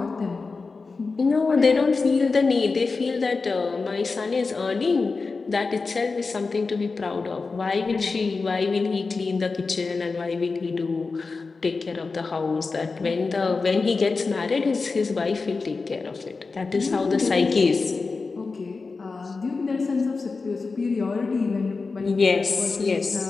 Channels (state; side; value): quieter; right; 4.2 dB